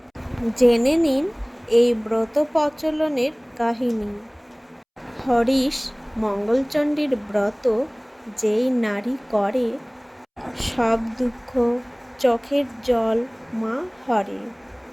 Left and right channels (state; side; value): identical; both; correlation 1.00